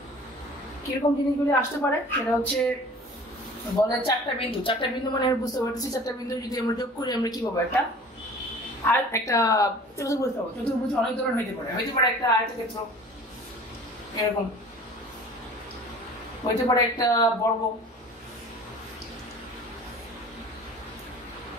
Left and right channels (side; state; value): both; normal; correlation 0.45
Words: কিরকম জিনিসগুলি আসতে পারে সেটা হচ্ছে বলে চারটা বিন্দু মানে আমি বুঝতে পারতেছি চারটা বিন্দু যদি আমরা যোগ করি আমরা কি পাবো? একটা আর একটা চতুর্ভুজ পাবো। চতুর্ভুজ অনেক ধরনের হইতে পারে একটা আয়তক্ষেত্র, এরকম হইতে পারে একটা বর্গ,